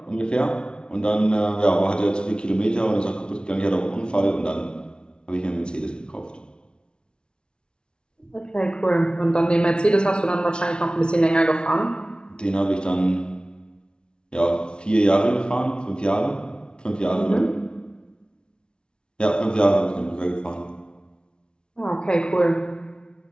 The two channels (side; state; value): right; late; 0.055 ms